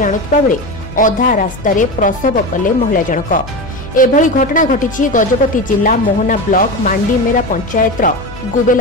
आणुतबा बेले अधा रास्तारे प्रसव कले महिला जनक। एभली घटना घटिछि गजपति जिला मोहना ब्लॉक मांडीमेरा पंचायतर गुबेल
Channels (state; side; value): noise; left; hum, 16 dB below the sound